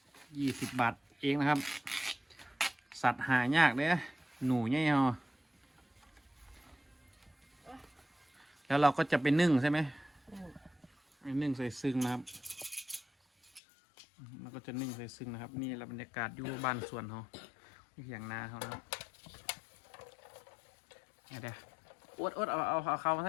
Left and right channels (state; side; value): drops out; right; at 13.6 s